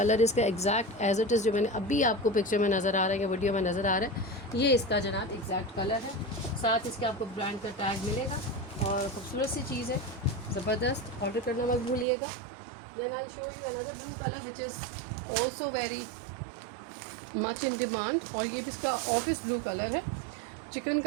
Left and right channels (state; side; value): drops out; left; at 12.1 s